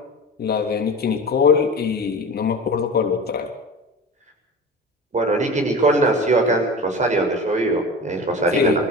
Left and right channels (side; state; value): both; normal; correlation 0.33